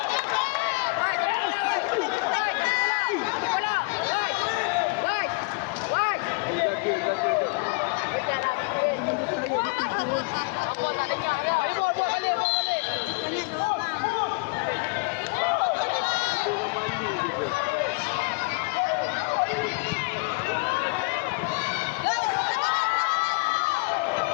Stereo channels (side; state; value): right; quieter; 30.6 dB